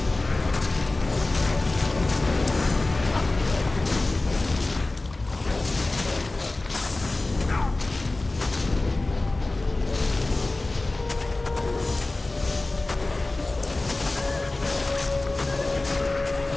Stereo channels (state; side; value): quieter; right; 3.0 dB